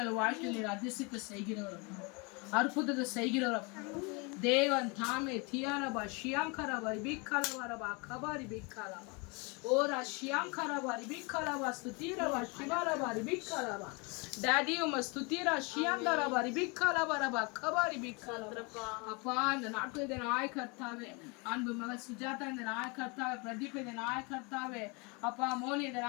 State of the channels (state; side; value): quieter; right; 30.0 dB